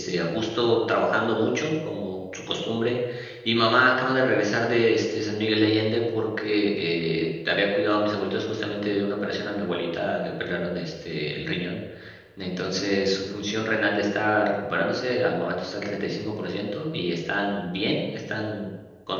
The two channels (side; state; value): both; identical; correlation 1.00